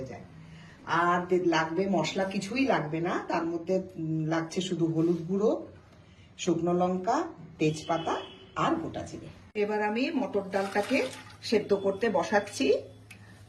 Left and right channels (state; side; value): identical; both; correlation 1.00